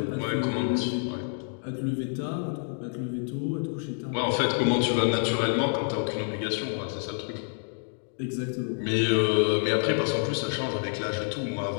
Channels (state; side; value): silent; right; 59 dB below the other